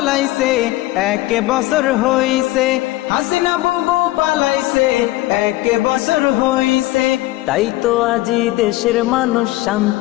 1 বছর হইছে। হাসিনা বুবু পালাইছে, 1 বছর হইছে। তাই তো আজি দেশের মানুষ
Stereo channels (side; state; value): right; quieter; 18.1 dB